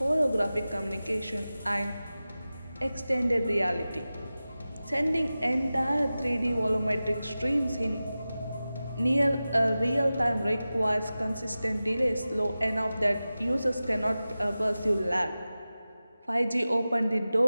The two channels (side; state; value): both; inverted; correlation -0.95